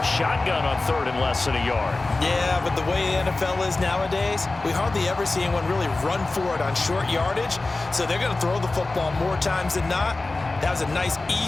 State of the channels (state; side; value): quieter; right; 3.2 dB